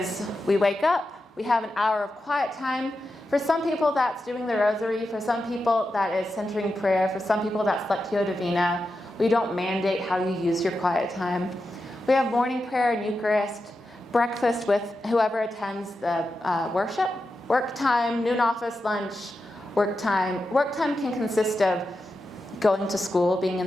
we wake up, we have an hour of quiet time. For some people, that's doing the rosary. For some people, that is centering prayer. For some people, that's Lectio Divina. We don't mandate how you use your quiet time. We have morning prayer and Eucharist, breakfast with whoever attends the worship, work time, noon office, lunch, work time. Work time can consist of going to school, being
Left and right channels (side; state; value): both; normal; correlation 0.89